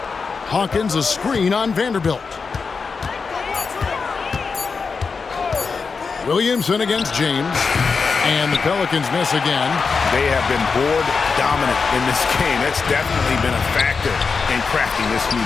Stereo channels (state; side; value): quieter; right; 5.0 dB